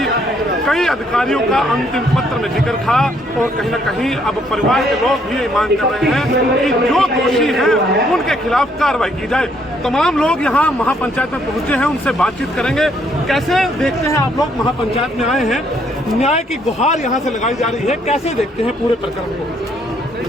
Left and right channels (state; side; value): normal; both; correlation 0.69